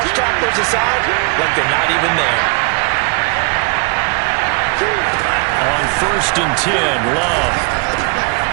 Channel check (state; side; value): quieter; left; 31.8 dB